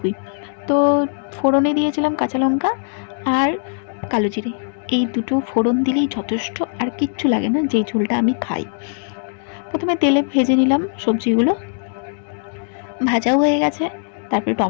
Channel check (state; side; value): silent; right; digital silence